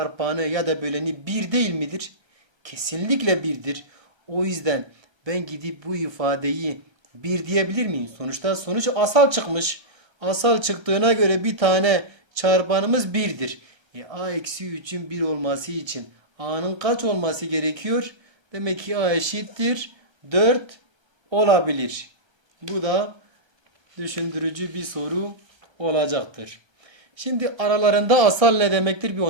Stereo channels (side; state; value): left; late; 1.3 ms